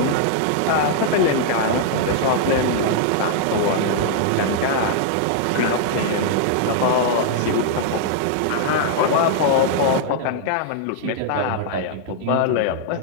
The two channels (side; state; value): both; different; correlation -0.01